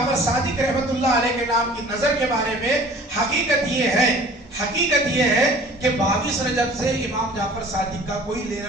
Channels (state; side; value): normal; both; correlation 0.48